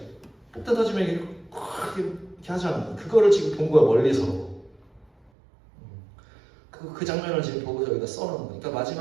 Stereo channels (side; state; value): left; drops out; at 5.3 s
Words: 폭탄 터지면 이렇게 하잖아. 그거를 지금 본 거야 멀리서. 그 장면을 지금 보고 여기다 써놓은 거야.